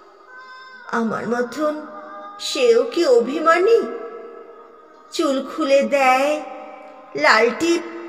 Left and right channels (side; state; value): both; identical; correlation 1.00